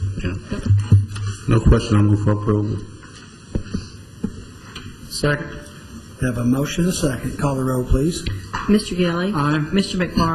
Yeah. No question. I'll move for approval. Second. Have a motion and a second. Call the roll, please. Mr. Gilly. Aye. Mr.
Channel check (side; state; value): both; identical; correlation 1.00